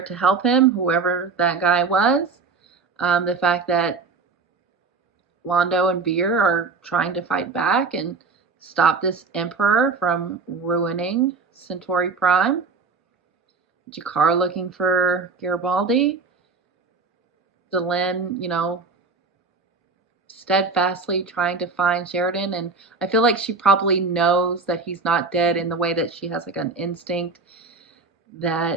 to help him, whoever that guy was. The fact that Londo and Veer are trying to fight back and stop this Emperor from ruining Centauri Prime. Jakar looking for Garibaldi. Delenn, steadfastly trying to find Sheridan, and I feel like she probably knows that he's not dead in the way that she has like an instinct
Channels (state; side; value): quieter; left; 4.4 dB